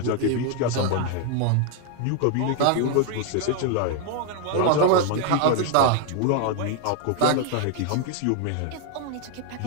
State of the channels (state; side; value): different; both; correlation 0.00